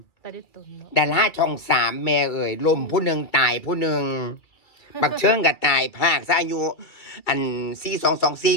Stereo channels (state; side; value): late; right; 2.3 ms